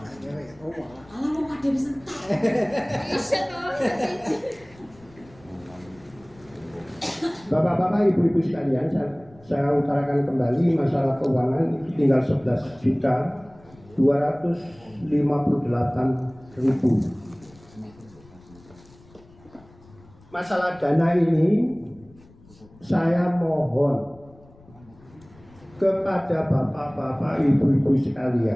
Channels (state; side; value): noise; left; rumble, 25 dB below the sound